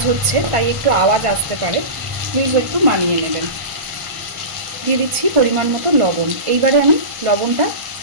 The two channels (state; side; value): late; left; 1.5 ms